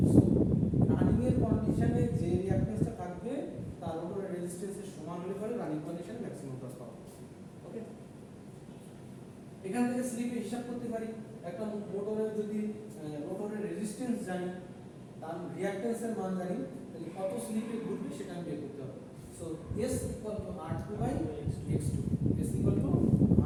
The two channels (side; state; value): both; identical; correlation 1.00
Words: সো রানিং এর কন্ডিশনে যে রিঅ্যাক্ট্যান্সটা থাকবে তার উপরে রেজিস্ট্যান্সের সমান হলে পরে রানিং কন্ডিশনে ম্যাক্সিমাম টর্ক পাবো। ওকে, এখান থেকে স্লিপে হিসাব করতে পারি, একটা মোটরের যদি মোটরের রেজিস্ট্যান্স জানি, তার রিঅ্যাক্ট্যান্সের মান জানি, তাহলে কত স্লিপে ঘুরবে সেটা আমি বের করতে হবে। So S equal to R2 by X2, S equal to